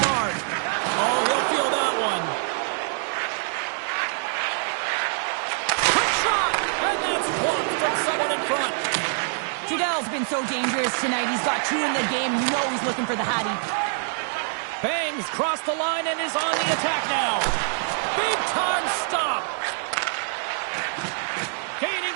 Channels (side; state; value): left; silent; 62 dB below the other